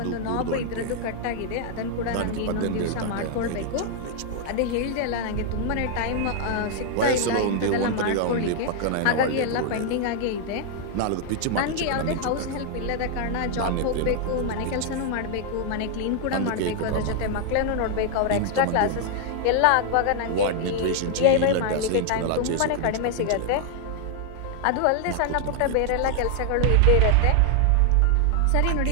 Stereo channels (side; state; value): both; different; correlation 0.00